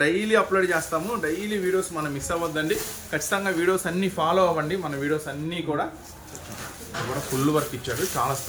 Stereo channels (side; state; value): both; identical; correlation 1.00